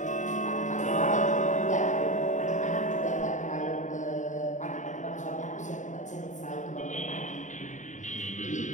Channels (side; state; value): right; late; 0.36 ms